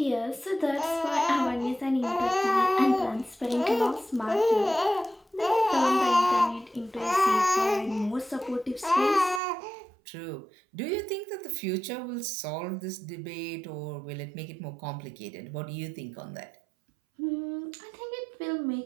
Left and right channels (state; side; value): drops out; left; at 9.4 s